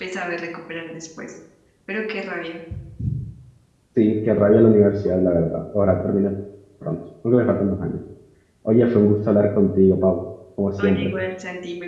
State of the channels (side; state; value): both; identical; correlation 1.00